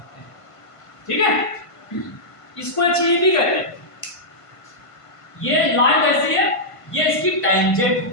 हैं, ठीक है। इसको एक चीज भी कहते हैं, ये लाइन कैसी है, ये इसकी टेंजेंट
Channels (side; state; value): right; late; 1.5 ms